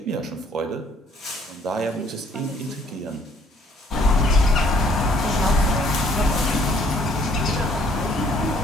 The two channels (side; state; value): both; normal; correlation 0.62